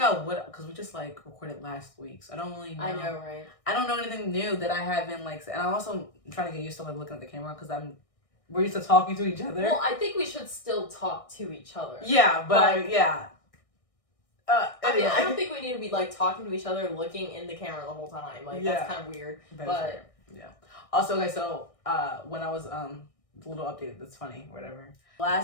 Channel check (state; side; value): late; right; 1.6 ms